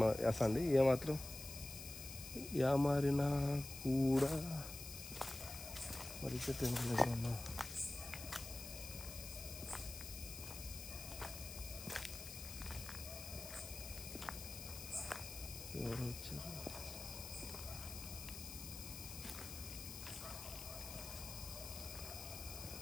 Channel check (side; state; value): left; noise; hiss, 10 dB below the sound